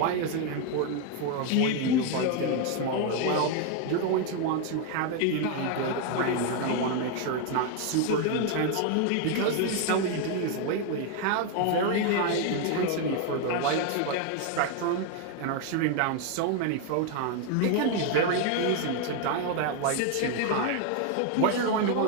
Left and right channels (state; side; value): different; both; correlation 0.01